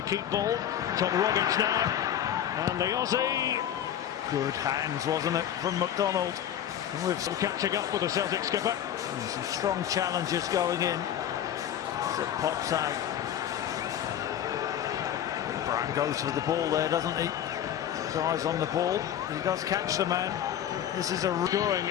keep ball. Tom Rogic now. And the Aussie. Good hands, wasn't it, from McDonald. With some catching up with the Celtic skipper. And some strong challenges going in. As it pops out. Brown goes for the ball there, doesn't he? Eyes on the ball. He does catch the man. This is a scoring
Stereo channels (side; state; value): right; quieter; 10.4 dB